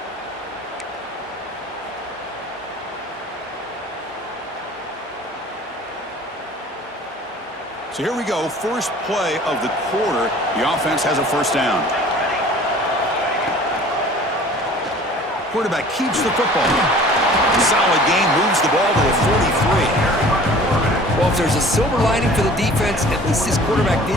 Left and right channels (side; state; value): both; normal; correlation 0.47